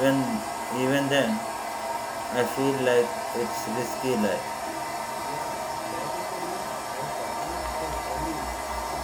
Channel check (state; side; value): identical; both; correlation 1.00